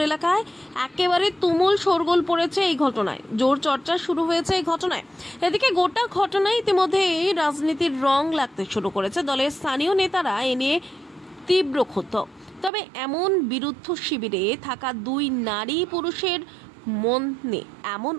এলাকায় একেবারে তুমুল শোরগোল পড়েছে এই ঘটনায়, জোর চর্চা শুরু হয়েছে এই ঘটনায়। এদিকে গোটা ঘটনায় ইতিমধ্যে রাজনীতির রং লাগতে শুরু করেছে। দলের স্থানীয় নেতারা এ নিয়ে তীব্র ক্ষুব্ধ। তবে এমন বিরুদ্ধ শিবিরে থাকা দুই নারী পুরুষের মনে এমন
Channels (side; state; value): left; drops out; at 12.7 s